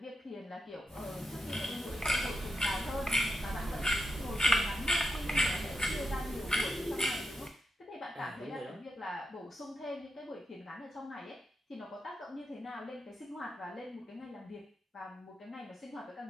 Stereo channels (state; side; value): normal; both; correlation 0.86